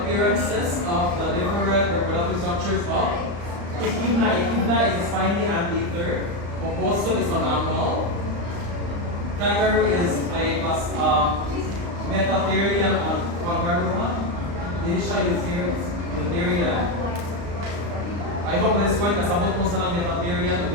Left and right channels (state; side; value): late; left; 35 ms